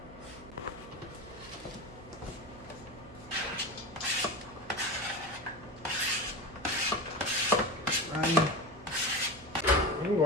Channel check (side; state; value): right; noise; hum, 17 dB below the sound